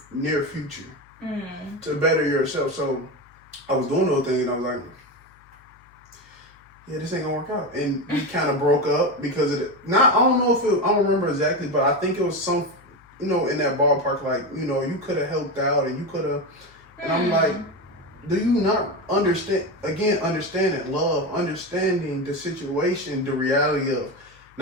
near future to better yourself. So I was doing those things and I was like, yeah, this ain't gonna work out. And we kind of broke up because of it. I don't know if I don't remember exactly, but I think it was some, in that ballpark, like, you could have helped out and you could have. And I'm like, do you not understand, again, understanding love, understanding the situation, the reality of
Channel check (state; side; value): noise; left; hum, 28 dB below the sound